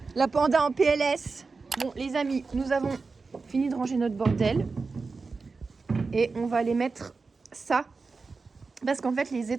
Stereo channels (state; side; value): quieter; left; 4.3 dB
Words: La panda en PLS. Bon, les amis, nous avons fini de ranger notre bordel. Et on va aller mettre ça. Parce qu'en fait, les